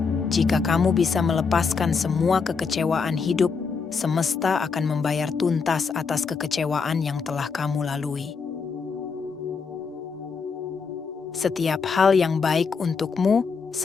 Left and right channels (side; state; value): right; quieter; 5.3 dB